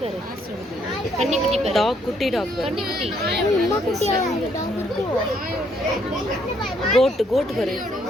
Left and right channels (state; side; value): normal; both; correlation 0.70